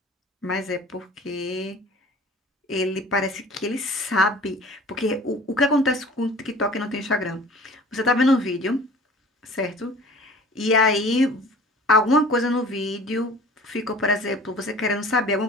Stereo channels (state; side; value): normal; both; correlation 0.45